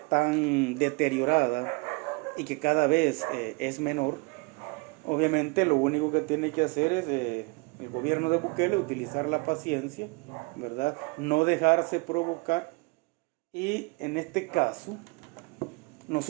tan deteriorada y que cada vez es menor, obviamente lo único que tiene que hacer es el gobierno de Bukele utilizar la paciencia, ¿verdad? No dejarse provocar, y en este caso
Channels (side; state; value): left; quieter; 27.9 dB